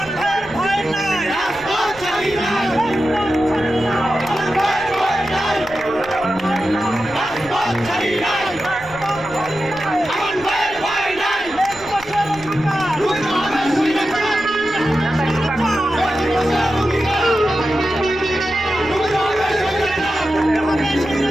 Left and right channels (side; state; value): right; noise; rumble, 21 dB below the sound